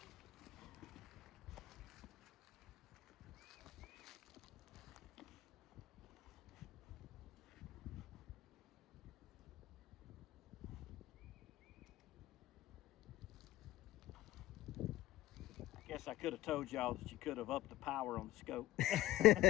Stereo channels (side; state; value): right; quieter; 16.3 dB